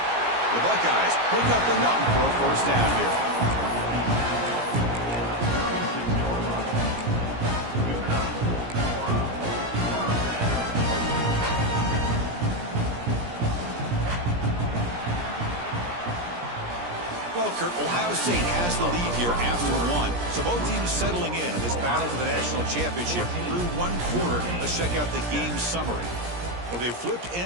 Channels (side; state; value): left; late; 17 ms